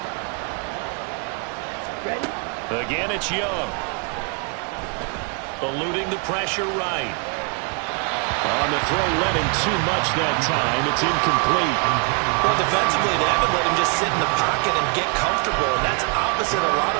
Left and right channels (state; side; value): quieter; left; 35.6 dB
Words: Ready? Again, it's Young. Eluding the pressure right. On the throw, let him too much that time. It's incomplete. Well, defensively, they haven't let him just sit in the pocket and get comfortable, and that's opposite a lot